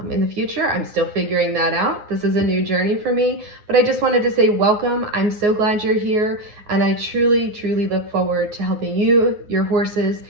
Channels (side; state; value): left; late; 9.6 ms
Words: in the future. I'm still figuring that out. This is a new journey for me, but I just wanted to say welcome. I'm so glad you're here, and I truly, truly look forward to helping you, your horses,